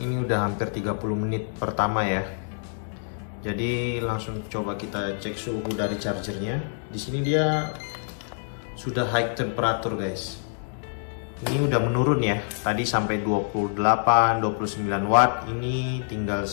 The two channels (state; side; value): silent; right; 61 dB below the other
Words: udah hampir 30 menit pertama ya. Jadi langsung coba kita cek suhu dari chargernya. Di sini dia sudah high temperature guys. Ini udah menurun ya. Tadi sampai 28, 29 watt. Ini tinggal